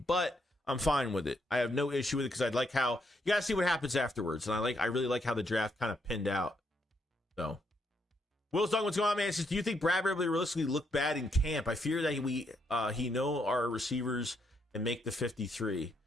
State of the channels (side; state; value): both; normal; correlation 0.76